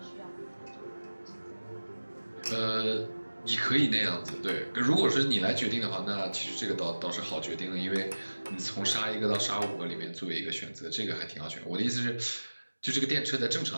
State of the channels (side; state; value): both; inverted; correlation -1.00